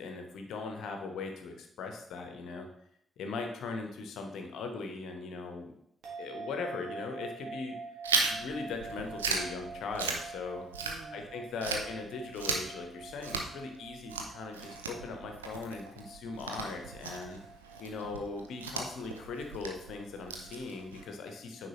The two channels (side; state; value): both; normal; correlation 0.36